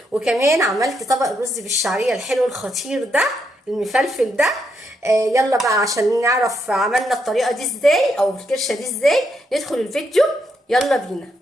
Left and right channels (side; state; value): both; normal; correlation 0.79